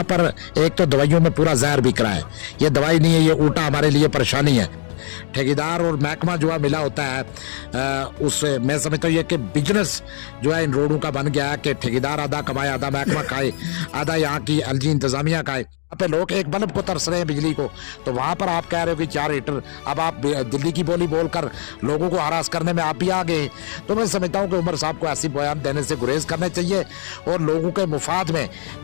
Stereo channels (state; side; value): silent; right; digital silence